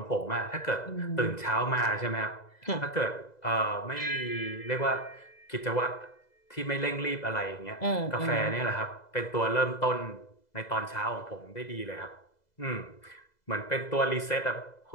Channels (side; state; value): right; late; 2.0 ms